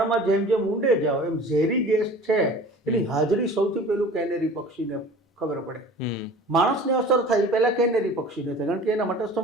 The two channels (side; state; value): both; normal; correlation 0.43